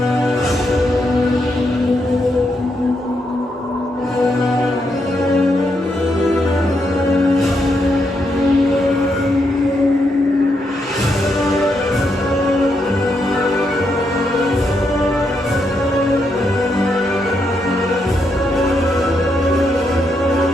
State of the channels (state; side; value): normal; both; correlation 0.80